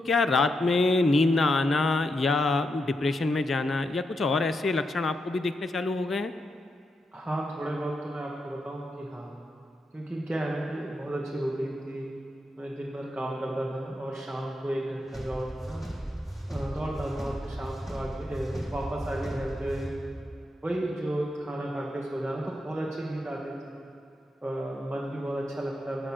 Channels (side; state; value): both; normal; correlation 0.84